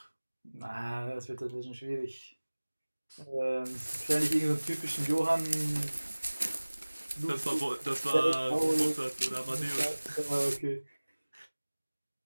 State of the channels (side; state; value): both; inverted; correlation -1.00